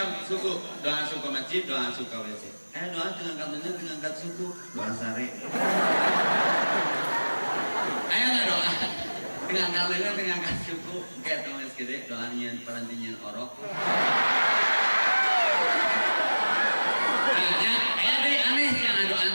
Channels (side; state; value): both; inverted; correlation -1.00